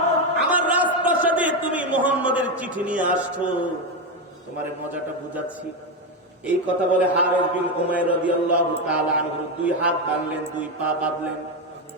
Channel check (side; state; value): both; normal; correlation 0.10